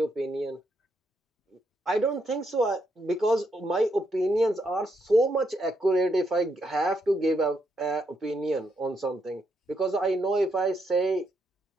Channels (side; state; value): both; normal; correlation 0.78